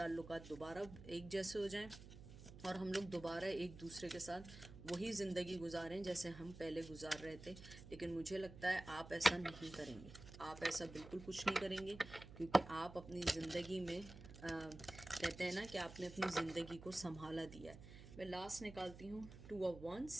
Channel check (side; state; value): right; noise; hum, 14 dB below the sound